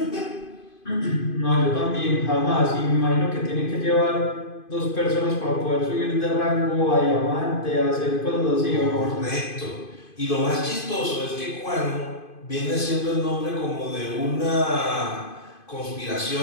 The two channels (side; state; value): right; late; 2.5 ms